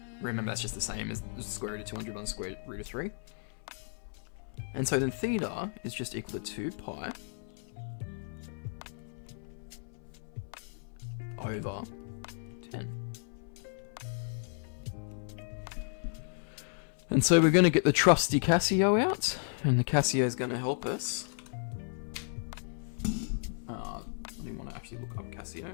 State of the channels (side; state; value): right; silent; 55 dB below the other